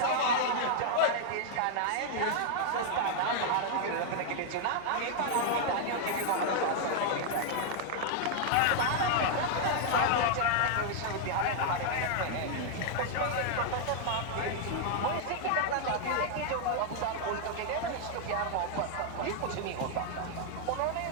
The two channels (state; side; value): different; both; correlation 0.00